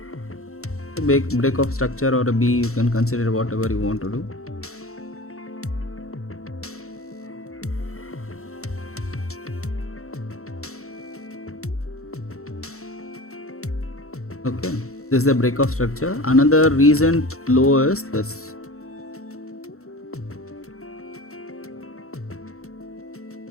break of structure, or a B, you can consider whatever you want to do. Okay, this is the break of structure. Another recent low is this.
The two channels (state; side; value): late; right; 0.63 ms